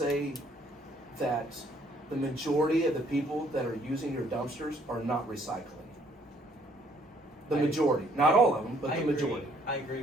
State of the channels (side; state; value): both; normal; correlation 0.64